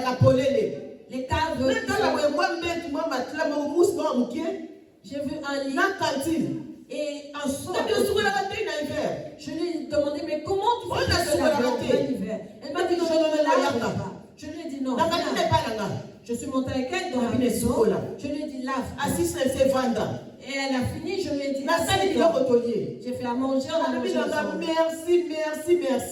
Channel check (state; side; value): identical; both; correlation 1.00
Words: Les caves. J'ai vu un lit et un seau. Je lui ai demandé, mais comment tu fais ça l'hiver? Elle m'a dit, je ne me lave pas. Je lui ai dit non. Je suis montée avec elle dans la maison. Je lui ai dit, lave. Et elle a fini, je lui ai dit, j'ai fait à manger, on a mangé ensemble. Merci.